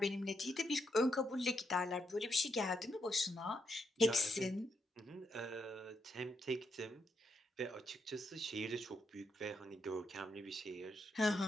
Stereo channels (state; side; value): normal; both; correlation 0.80